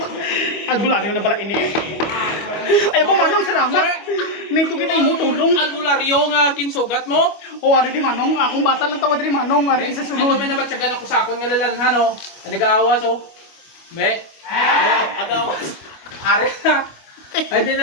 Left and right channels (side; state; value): right; late; 25 ms